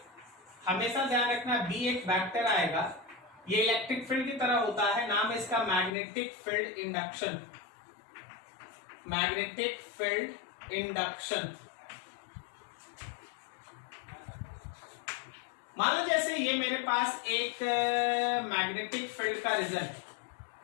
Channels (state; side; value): drops out; right; at 5.9 s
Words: हमेशा ध्यान रखना बी एक वेक्टर आएगा, ये इलेक्ट्रिक फील्ड की तरह होता है, नाम है इसका magnetic field induction. Magnetic field induction. मान लो जैसे ये मेरे पास एक मैग्नेटिक फील्ड का रिजल्ट,